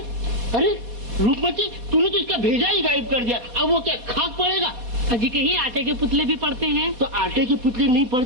अरे रूपमती तूने तो इसका भेजा ही गायब कर दिया। अब वो क्या खाक पड़ेगा? अजी कहीं आटे के पुतले भी पढ़ते हैं। तो आटे के पुतले नहीं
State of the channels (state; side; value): late; left; 4.1 ms